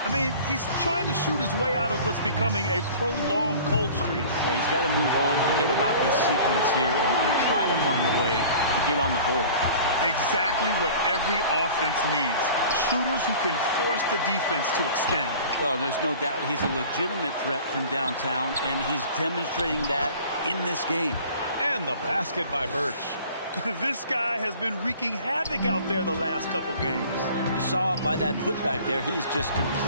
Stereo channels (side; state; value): both; inverted; correlation -0.45